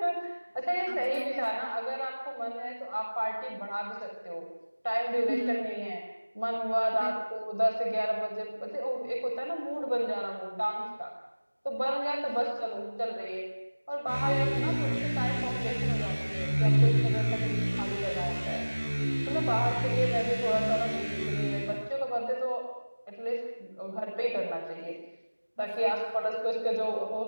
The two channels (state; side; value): inverted; both; correlation -1.00